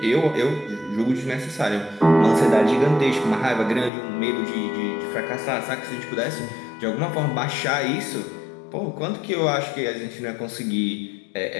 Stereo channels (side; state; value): right; drops out; at 3.9 s